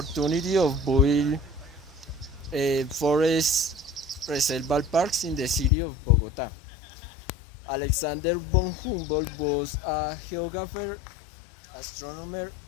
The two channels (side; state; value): right; drops out; at 5.7 s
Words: of building forest reserval parks in the city of Bogota. Alexander von Humboldt was a geographer, astronomer,